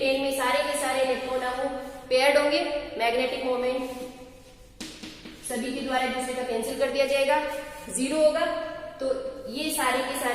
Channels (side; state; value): both; identical; correlation 1.00